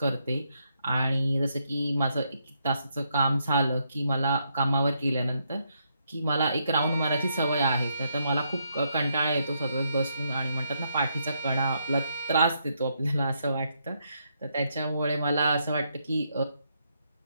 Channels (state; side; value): inverted; both; correlation -0.77